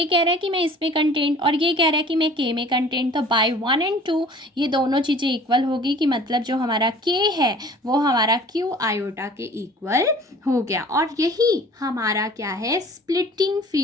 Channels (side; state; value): both; normal; correlation 0.48